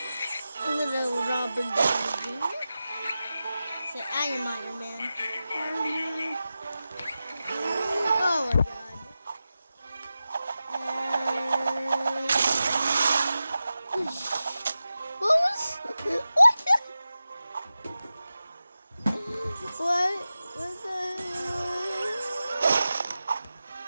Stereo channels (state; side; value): inverted; both; correlation -0.93